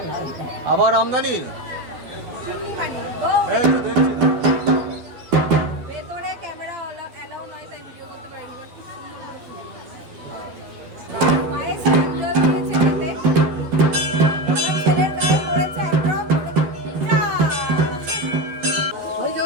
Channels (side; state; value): left; late; 12 ms